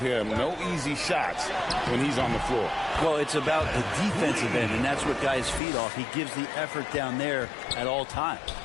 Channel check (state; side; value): drops out; right; at 5.6 s